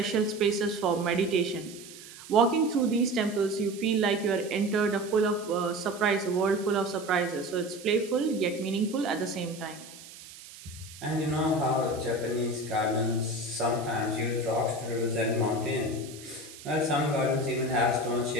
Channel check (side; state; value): right; noise; hiss, 17 dB below the sound